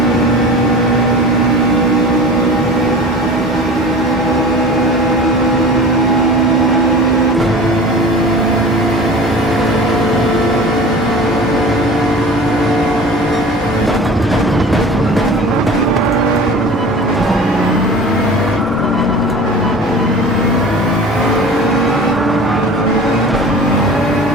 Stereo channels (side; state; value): both; normal; correlation 0.38